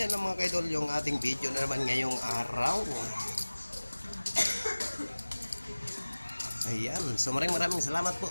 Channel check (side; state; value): both; inverted; correlation -1.00